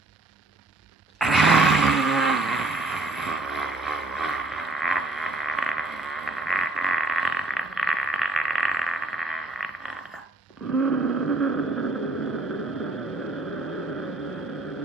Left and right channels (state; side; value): quieter; left; 3.1 dB